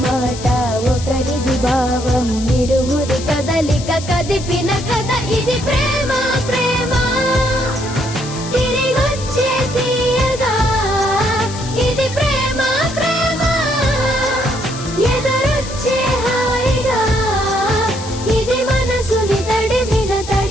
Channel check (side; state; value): left; noise; hiss, 12 dB below the sound